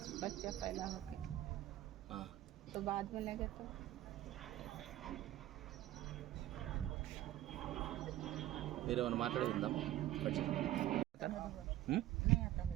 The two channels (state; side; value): quieter; left; 14.3 dB